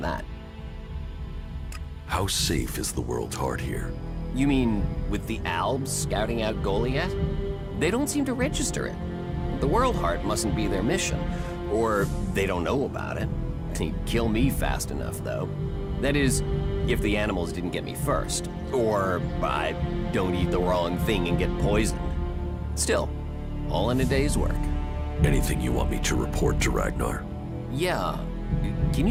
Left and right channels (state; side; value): identical; both; correlation 1.00